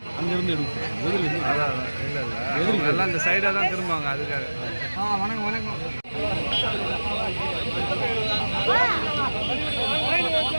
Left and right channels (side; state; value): both; inverted; correlation -1.00